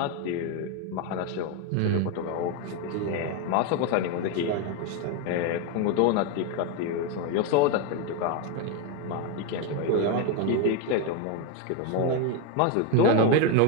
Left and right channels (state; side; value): different; both; correlation 0.02